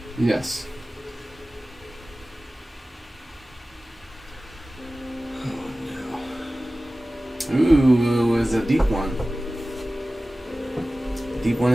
Yes. Oh no. Ooh, it's a deep one. Deep one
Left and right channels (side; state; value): both; normal; correlation 0.96